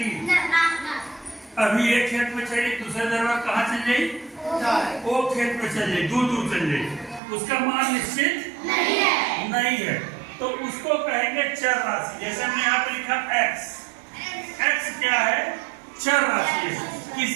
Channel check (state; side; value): drops out; left; at 7.2 s